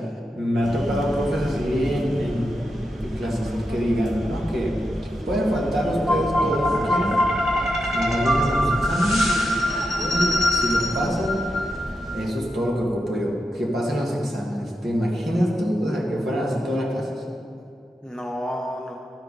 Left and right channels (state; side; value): normal; both; correlation 0.87